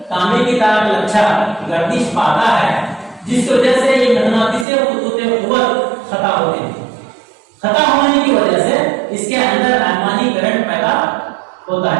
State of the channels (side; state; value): left; drops out; at 4.7 s